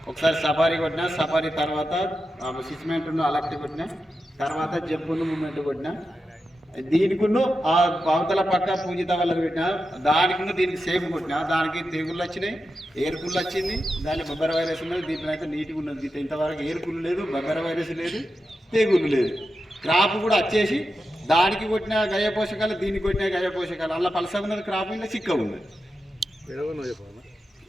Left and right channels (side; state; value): both; normal; correlation 0.90